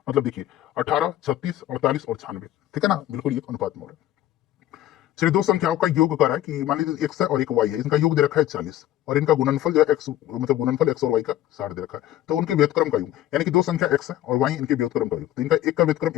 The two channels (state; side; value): quieter; right; 13.3 dB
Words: मतलब देखिए 18 36 48 और 96। ठीक है ना, बिल्कुल ये अनुपात में हो रहा है। चलिए दो संख्याओं का योग कर रहा है कि मान लीजिए x है और एक y है, इनका योग दे रखा है 40 और इनका गुणनफल जो है x मतलब गुणनफल x और y का 60 दे रखा है। तो उनके व्युत्क्रम का योग यानी कि दो संख्या x है और y इनके व्युत्क्रम का योग, तो इनका एक का व्युत्क्रम